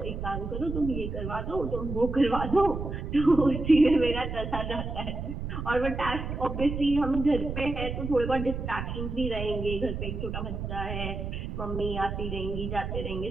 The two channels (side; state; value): right; noise; rumble, 5 dB below the sound